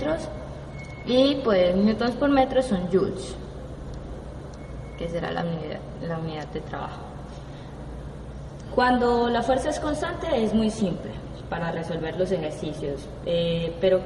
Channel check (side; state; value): both; identical; correlation 1.00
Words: y pues newtons por metro son joules, que será la unidad de trabajo. Cuando la fuerza es constante es muy simple para resolver los ejercicios, pero